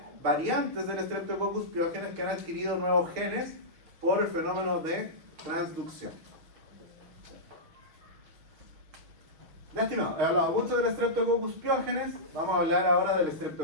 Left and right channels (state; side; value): late; left; 6.2 ms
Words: variantes del Streptococcus pyogenes que han adquirido nuevos genes por el fenómeno de transducción. Ya, estimado, he hablado mucho del Streptococcus pyogenes, vamos a hablar ahora del